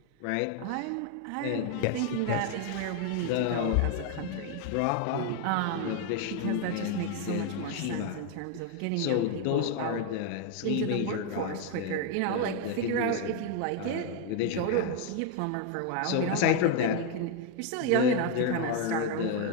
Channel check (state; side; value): different; both; correlation 0.01